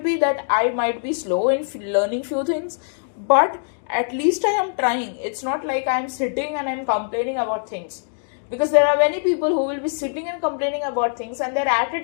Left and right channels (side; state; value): right; silent; digital silence